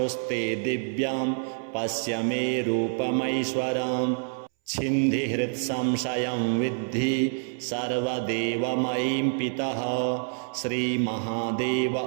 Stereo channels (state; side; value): silent; left; 60 dB below the other